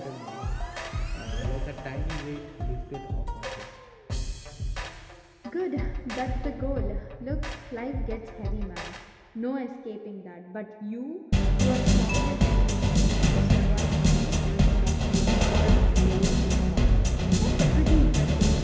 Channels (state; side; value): identical; both; correlation 1.00